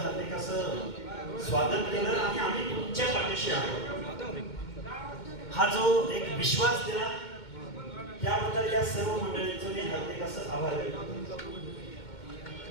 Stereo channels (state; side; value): late; right; 2.2 ms